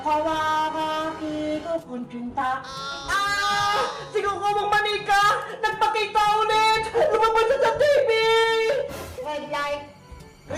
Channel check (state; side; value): identical; both; correlation 1.00